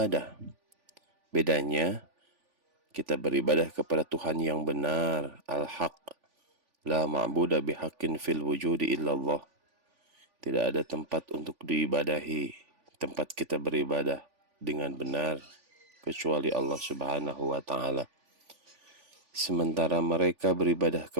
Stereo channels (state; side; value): late; left; 3.5 ms